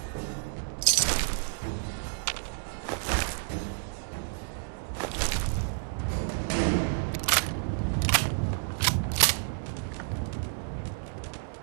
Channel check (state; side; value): silent; left; digital silence